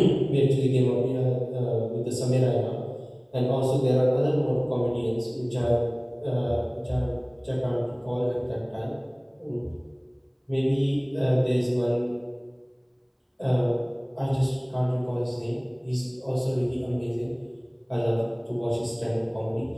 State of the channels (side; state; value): both; identical; correlation 1.00